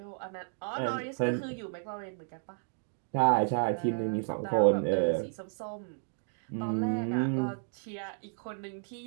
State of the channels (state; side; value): silent; left; digital silence